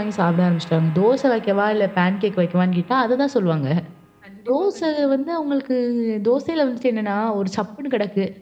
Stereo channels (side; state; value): both; identical; correlation 1.00